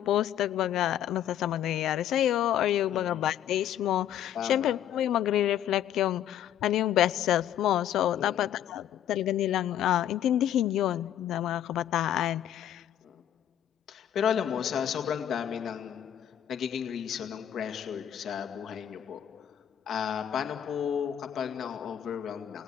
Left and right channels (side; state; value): right; quieter; 10.6 dB